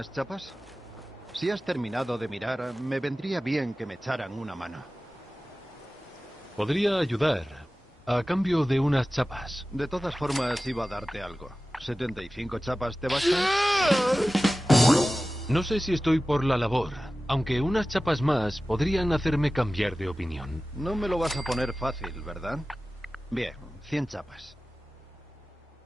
chapas? Si has terminado de mirar, me vendría bien que me echaran una mano. Podría ayudar, a cambio de unas chapas. De todas formas, iba a darte algo. ¿75 chapas te bastan? No sé si estoy por la labor, aunque unas chapas más podrían hacerme cambiar de opinión. No me lo vas a poner fácil, ¿verdad? Bien, 100 chapas.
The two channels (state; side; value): normal; both; correlation 0.96